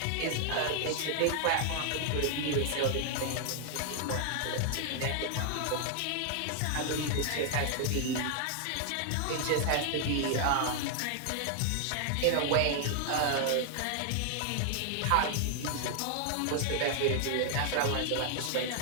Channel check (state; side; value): different; both; correlation 0.00